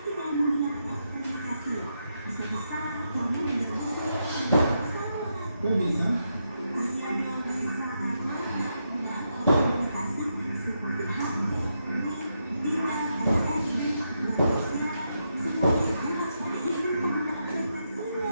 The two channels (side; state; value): both; inverted; correlation -0.83